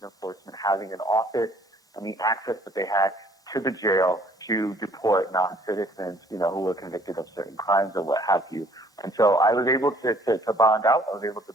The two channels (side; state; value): both; normal; correlation 0.59